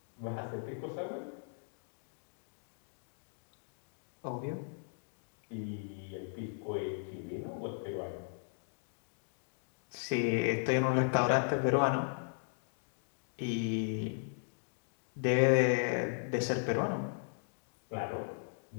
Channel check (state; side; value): silent; right; digital silence